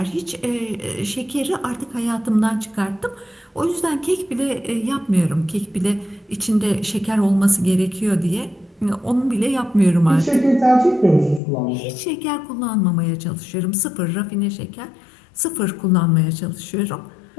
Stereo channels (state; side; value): drops out; right; at 11.4 s